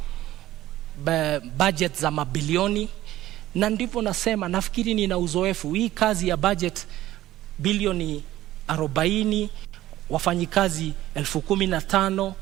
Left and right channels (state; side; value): quieter; left; 14.8 dB